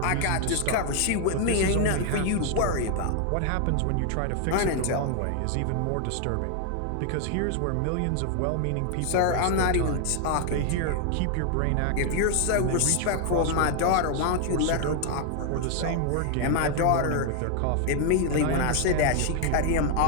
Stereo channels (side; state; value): both; different; correlation 0.00